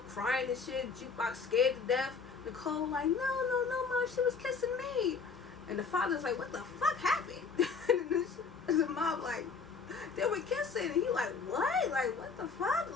crying and shit. Jukebox scared to death. Nicole like, no, mom, she was kissing me. And the father's like, what the fuck happened? And the mom like, they were kissing. And he like, what? Like, what the fuck?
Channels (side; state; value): right; quieter; 5.2 dB